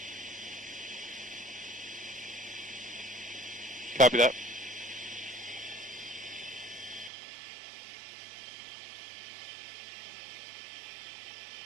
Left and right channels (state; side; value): drops out; left; at 7.1 s